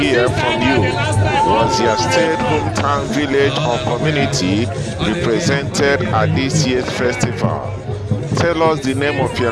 from you. Was your state, hometown, village, or community represented at this year's festival? Tell us the name of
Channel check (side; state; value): both; identical; correlation 1.00